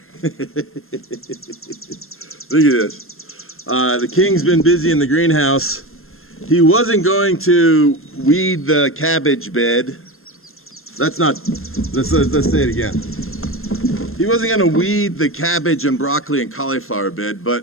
Look at this. The king's been busy in the greenhouse. He wasn't going to weed the cabbage bed. Let's say it again. He wasn't going to weed the cabbage and broccoli and cauliflower bed, but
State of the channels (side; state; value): right; late; 0.61 ms